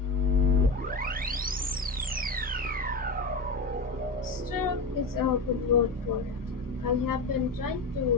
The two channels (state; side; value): quieter; right; 3.3 dB